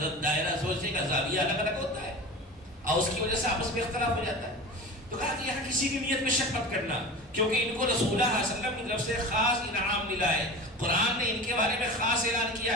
دائرہ, سوچنے کا زاویہ الگ الگ ہوتا ہے اور اس کی وجہ سے آپس میں اختلاف ہو جاتا ہے. تو کہا کہ یہاں کسی کی نیت میں شک مت کرنا, کیونکہ ان کو رسول اللہ صلی اللہ علیہ وسلم کی طرف سے خاص انعام ملا ہے. قرآن نے ان کے بارے میں خاص اعلان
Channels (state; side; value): normal; both; correlation 0.32